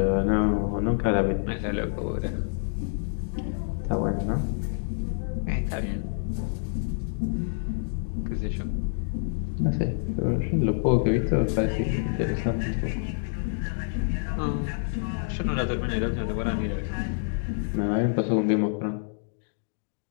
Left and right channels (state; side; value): silent; right; digital silence